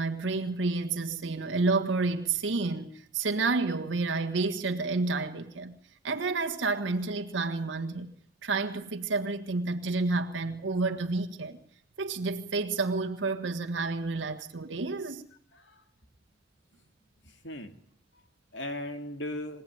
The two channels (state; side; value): quieter; left; 3.0 dB